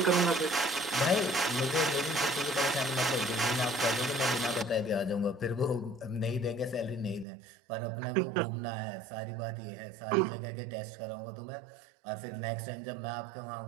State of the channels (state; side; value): drops out; left; at 7.2 s